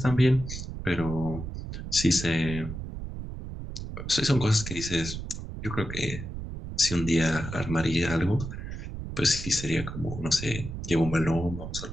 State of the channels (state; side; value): noise; right; rumble, 8 dB below the sound